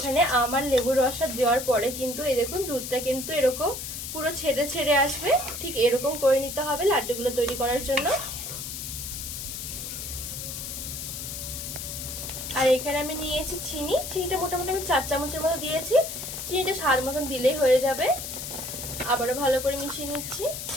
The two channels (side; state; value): left; noise; hiss, 7 dB below the sound